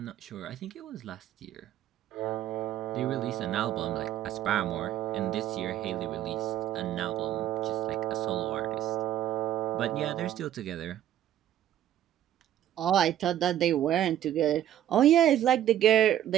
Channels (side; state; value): left; quieter; 11.7 dB